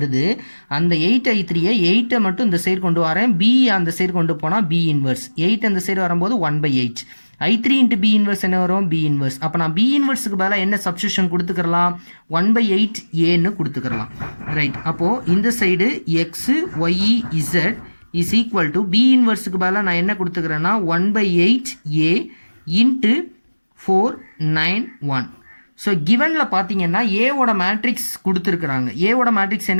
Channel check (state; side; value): inverted; both; correlation -1.00